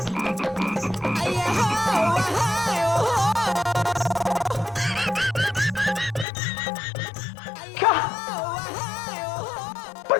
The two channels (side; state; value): right; drops out; at 6.2 s